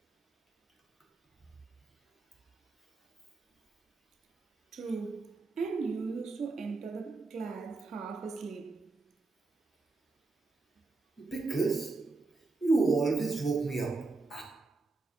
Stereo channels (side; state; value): left; quieter; 3.6 dB